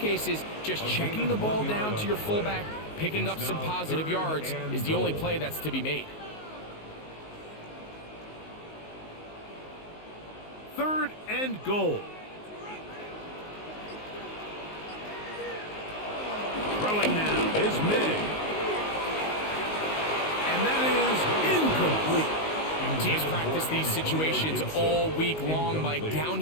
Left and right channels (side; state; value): right; late; 19 ms